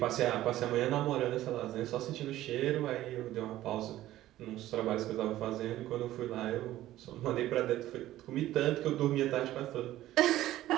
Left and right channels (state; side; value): quieter; left; 14.5 dB